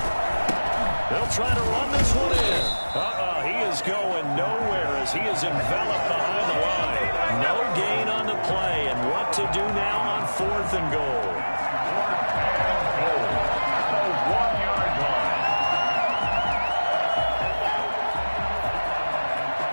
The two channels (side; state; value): both; inverted; correlation -1.00